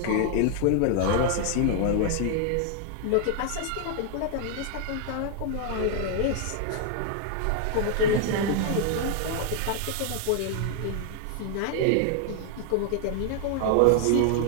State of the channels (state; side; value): different; both; correlation 0.00